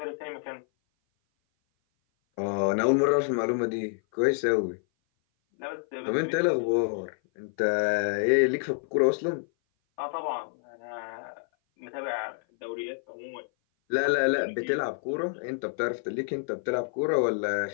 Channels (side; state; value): right; silent; 56 dB below the other